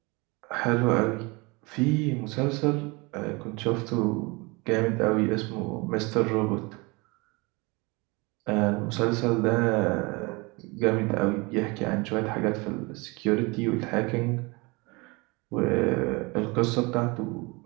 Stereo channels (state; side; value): quieter; left; 26.5 dB